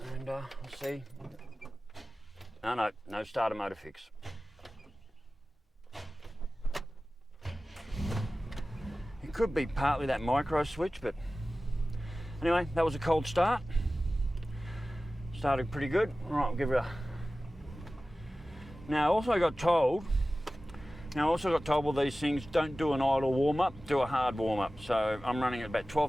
And let's see. No starter motor fix. It could be partly that micro switch, but anyway, that was a cold start. Started pretty good. All right, we'll give it a. Now, I also got told Now I also got told with these things, don't do an idle warm-up, do a hard warm-up. So I'm running at about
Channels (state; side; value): normal; both; correlation 0.96